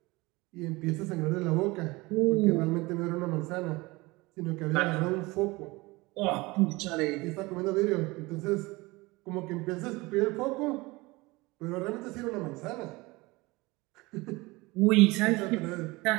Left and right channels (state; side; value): quieter; left; 22.7 dB